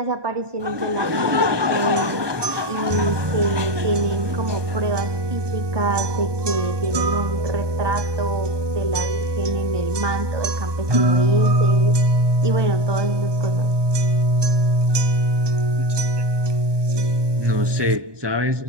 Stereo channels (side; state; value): left; late; 1.2 ms